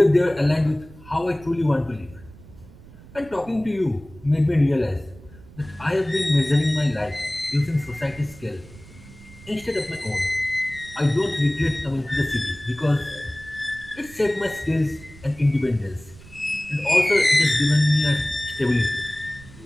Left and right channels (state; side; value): noise; right; rumble, 21 dB below the sound